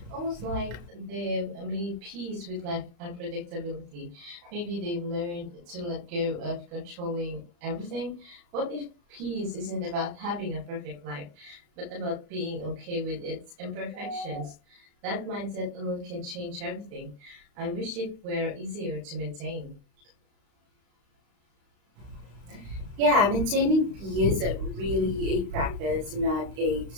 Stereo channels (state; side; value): late; left; 35 ms